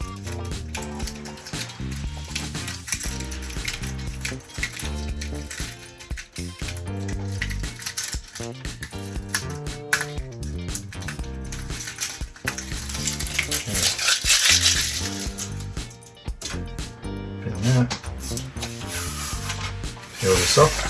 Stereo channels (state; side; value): identical; both; correlation 1.00